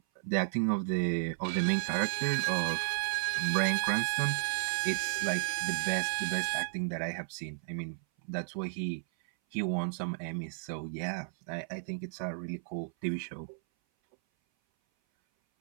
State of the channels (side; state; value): left; silent; 56 dB below the other